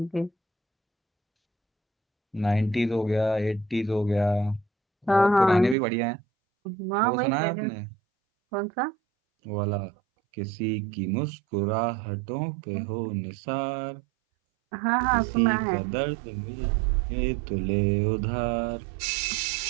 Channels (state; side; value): drops out; left; at 5.8 s